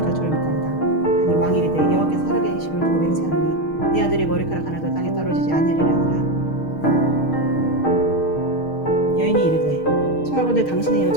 두려움이다. 하니 왕이 이르되 여호와께서 살아계심을 두고 맹세하노니 내 아들의 머리카락 하나도 땅에 떨어지지 아니하리라 하니라. 여인이 이르되 청하건대 당신의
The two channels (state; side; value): late; right; 6.4 ms